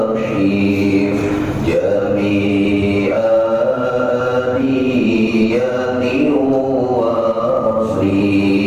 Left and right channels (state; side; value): identical; both; correlation 1.00